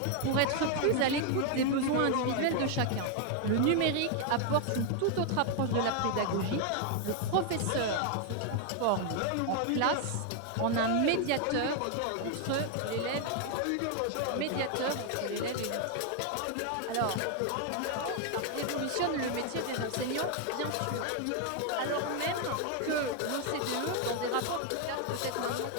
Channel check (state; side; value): different; both; correlation 0.00